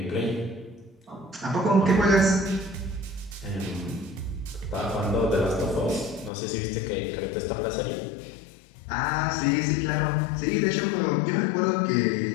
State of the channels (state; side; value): drops out; right; at 6.3 s